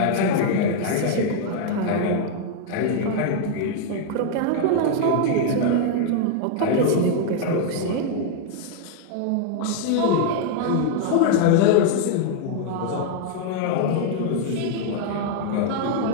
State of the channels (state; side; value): different; both; correlation -0.01